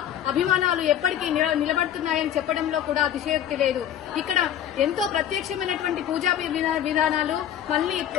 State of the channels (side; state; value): right; quieter; 10.4 dB